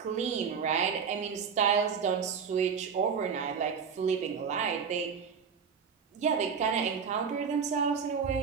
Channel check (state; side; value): quieter; left; 6.4 dB